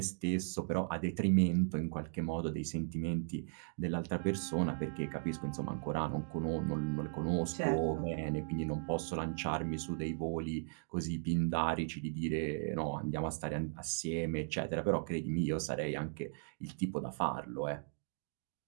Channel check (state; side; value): silent; left; digital silence